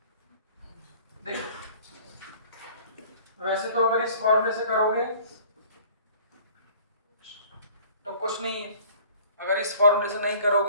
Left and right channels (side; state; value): both; inverted; correlation -0.50